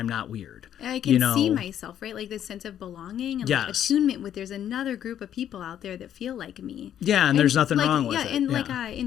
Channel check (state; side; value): quieter; right; 10.2 dB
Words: not weird. I can see myself, right? Like this sense of belonging and like attunement with there's another group of people out there that feel like me. Yeah, and there's nothing wrong with it. And like in